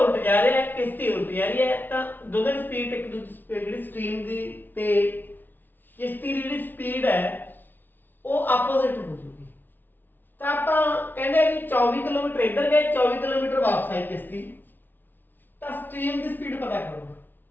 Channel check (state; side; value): late; right; 0.092 ms